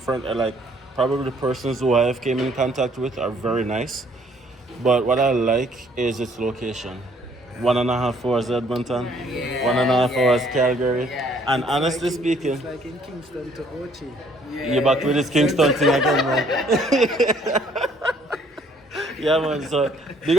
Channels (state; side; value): normal; both; correlation 0.62